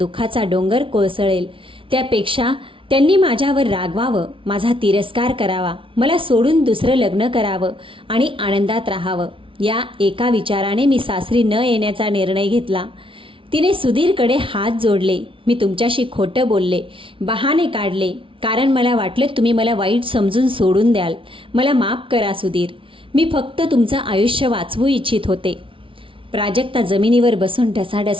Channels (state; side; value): late; left; 0.25 ms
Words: डोंगर कोसळेल. त्यापेक्षा त्यांनी माझ्यावर रागवावं, माझा तिरस्कार करावा, मला सोडून दुसरं लग्न करावं आणि आनंदात राहावं. या एका विचाराने मी सासरी न येण्याचा निर्णय घेतला. तिने सुधीरकडे हात जोडले. मी तुमच्याशी खोटं बोलले, बहाणे काढले, कारण मला वाटलं तुम्ही मला वाईट समजून सोडून द्याल. मला माफ करा सुधीर. मी फक्त तुमचं आयुष्य वाचवू इच्छित होते. प्राजक्ता जमिनीवर बसून